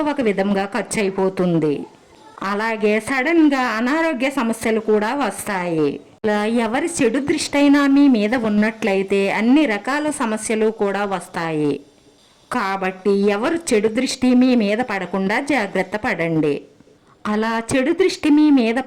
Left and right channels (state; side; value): identical; both; correlation 1.00